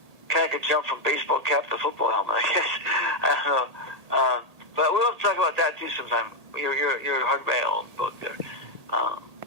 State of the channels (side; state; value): left; late; 1.8 ms